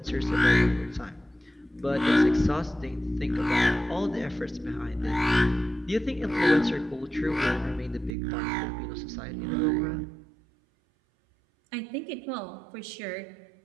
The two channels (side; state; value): left; drops out; at 8.2 s